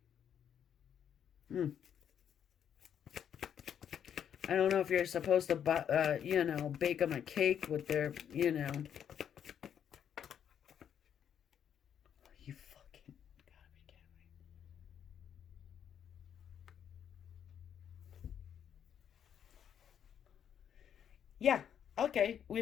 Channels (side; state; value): right; quieter; 8.8 dB